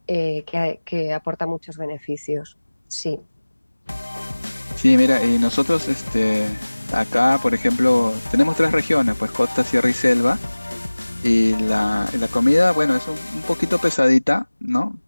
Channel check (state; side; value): inverted; both; correlation -1.00